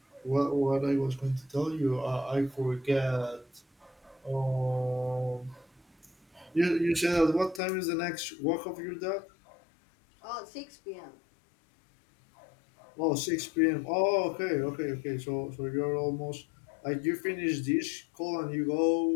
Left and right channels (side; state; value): right; drops out; at 7.6 s